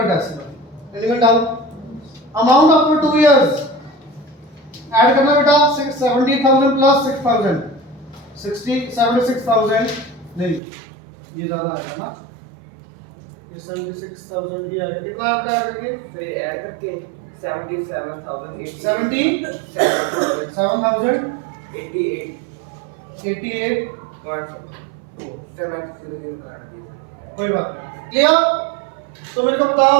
decimal element down amount after 2 years add करना बेटा 70,000 प्लस 6,000 76,000 नहीं ये ज्यादा आएगा ना ये 76,000 ही आएगा कितना आएगा ऐड करके फिर ऐड करके 77,088 7,000 88 कोई बात क्लियर तो मेरे को बताओ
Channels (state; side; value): drops out; left; at 10.6 s